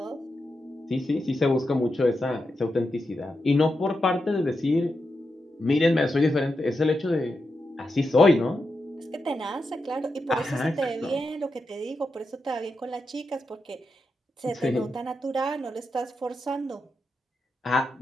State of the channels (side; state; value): both; normal; correlation 0.87